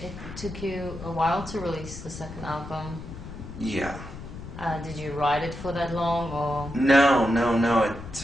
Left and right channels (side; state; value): left; noise; rumble, 11 dB below the sound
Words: It took you a while to release the second album. Yeah. Did you write it for that long, or? No. It